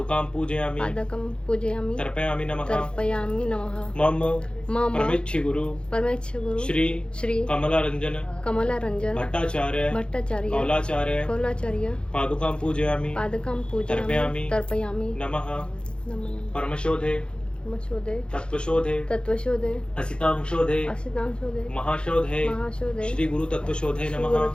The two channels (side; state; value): right; late; 0.053 ms